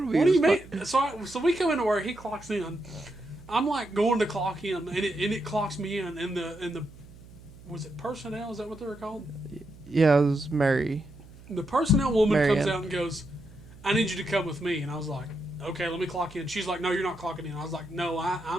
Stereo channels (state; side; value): noise; right; hum, 20 dB below the sound